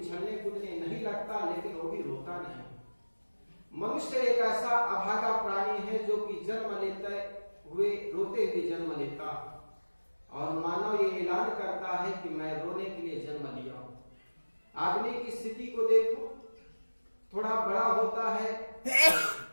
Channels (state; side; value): inverted; both; correlation -1.00